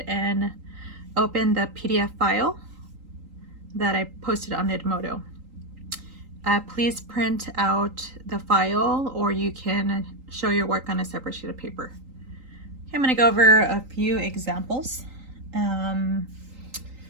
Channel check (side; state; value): left; late; 3.8 ms